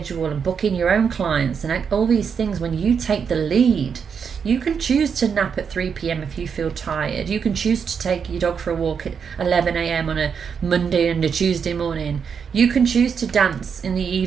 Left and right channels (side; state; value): left; quieter; 6.6 dB